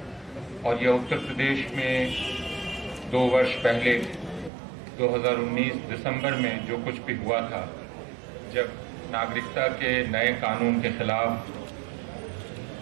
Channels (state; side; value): drops out; left; at 4.5 s